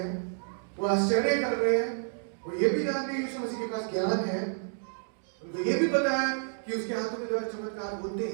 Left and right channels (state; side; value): silent; left; digital silence